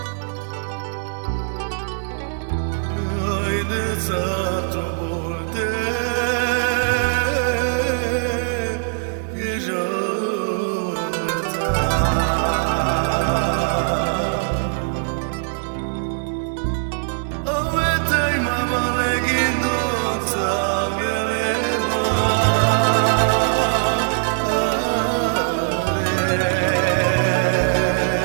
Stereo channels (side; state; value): left; silent; 65 dB below the other